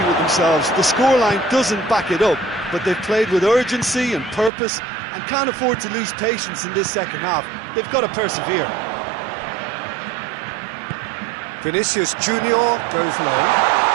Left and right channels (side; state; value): left; drops out; at 4.5 s